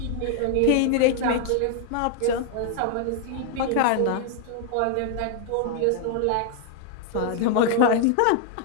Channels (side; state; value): both; different; correlation 0.00